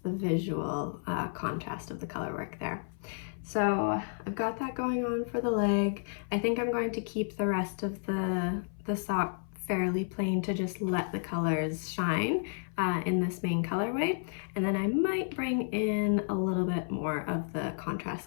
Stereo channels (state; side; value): silent; right; 56 dB below the other